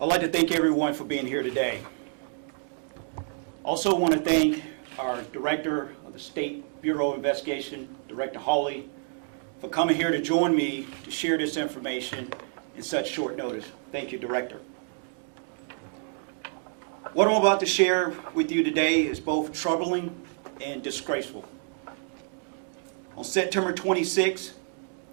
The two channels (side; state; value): left; silent; 55 dB below the other